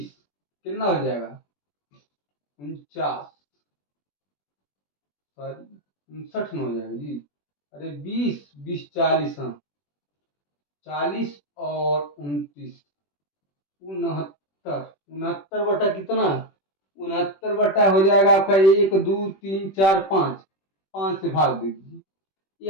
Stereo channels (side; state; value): right; late; 21 ms